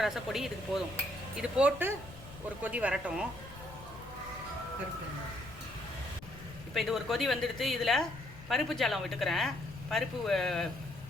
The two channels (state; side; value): noise; left; rumble, 17 dB below the sound